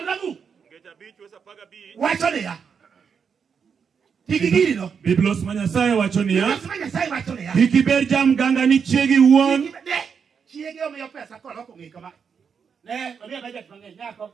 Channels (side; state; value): left; quieter; 6.5 dB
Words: Gecha bi. Wesa par kabi. Wacho ne ya. Biblos Manyasai wacho niya. Ikiber jam ganga ni chiegi wuon. Chiegi omiyo pesa koloko ng'i kama. Ne, omiyo budget mang'eny nyako.